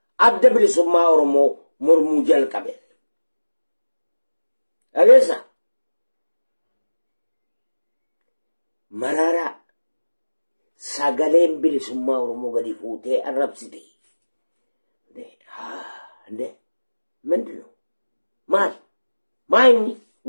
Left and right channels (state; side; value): inverted; both; correlation -1.00